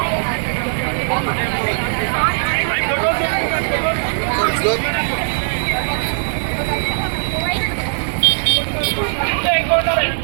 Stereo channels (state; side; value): silent; left; 67 dB below the other